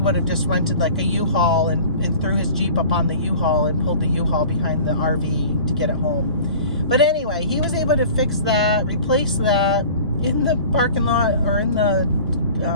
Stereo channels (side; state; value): both; inverted; correlation -0.43